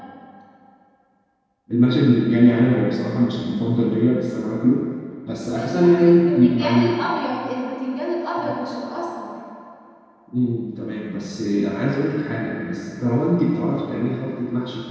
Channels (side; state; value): both; identical; correlation 1.00